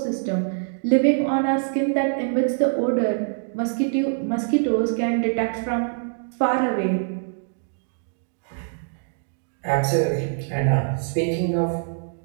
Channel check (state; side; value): silent; left; digital silence